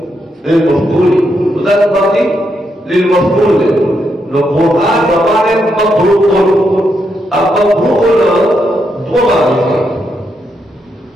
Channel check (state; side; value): normal; both; correlation 0.81